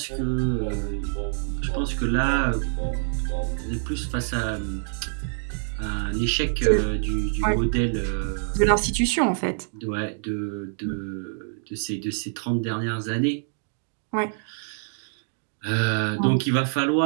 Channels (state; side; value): silent; left; digital silence